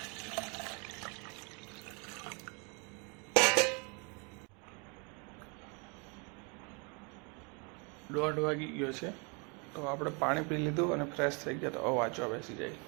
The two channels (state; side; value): quieter; left; 33.2 dB